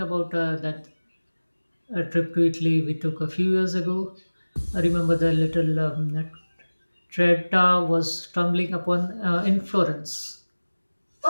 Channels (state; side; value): inverted; both; correlation -1.00